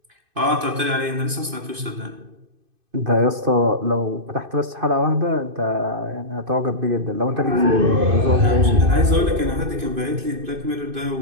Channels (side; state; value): left; late; 2.5 ms